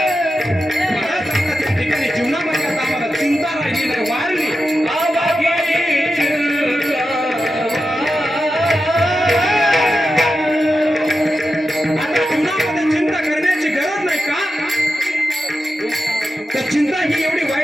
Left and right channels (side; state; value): both; normal; correlation 0.90